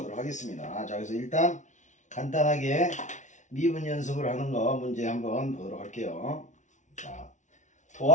하겠습니다. 자, 그래서 일단 간단하게 미분 연습을 하는 거 문제 한번 보도록 할게요. 자,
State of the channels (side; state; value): right; late; 0.36 ms